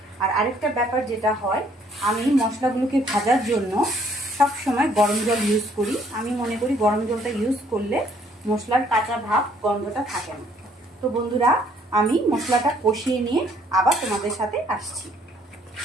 আর আরেকটা ব্যাপার যেটা হয়, আমি মশলাগুলোকে ভাজার জন্য সব সময় গরম জল ইউজ করি। আমি মনে করি গরম জলটা ইউজ করলে মশলার কাঁচা ভাব, গন্ধটা থাকে না। তো বন্ধুরা, আমি মশলাটা কষিয়ে নিয়ে আবার তোমাদের সাথে আসছি।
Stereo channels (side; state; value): both; normal; correlation 0.64